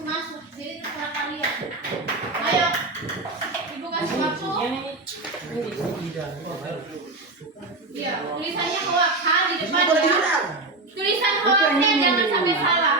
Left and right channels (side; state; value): left; quieter; 3.2 dB